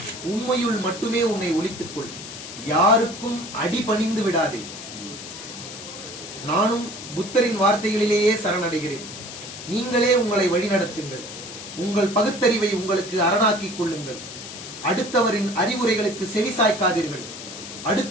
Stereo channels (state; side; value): noise; left; hiss, 11 dB below the sound